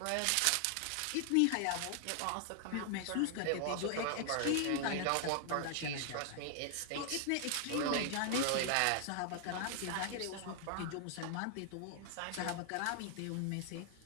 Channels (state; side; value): different; both; correlation 0.00